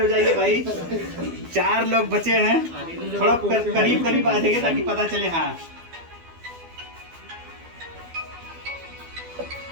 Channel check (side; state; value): left; late; 12 ms